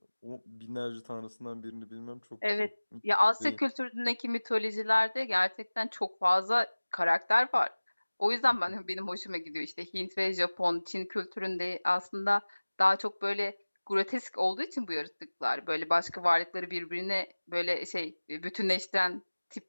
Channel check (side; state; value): both; inverted; correlation -1.00